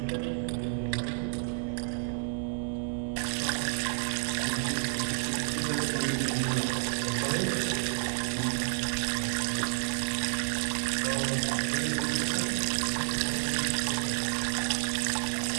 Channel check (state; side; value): silent; left; 57 dB below the other